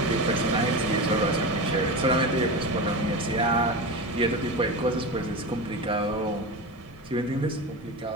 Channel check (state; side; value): normal; both; correlation 0.24